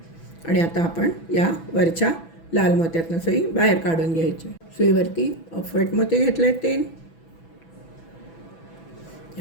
आणि आता आपण या वरच्या लाल मोत्यातनं सुई बाहेर काढून घ्यायची. सुईवरती ऑफ व्हाईट मोती घेतले आहेत 3.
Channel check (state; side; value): late; right; 6.0 ms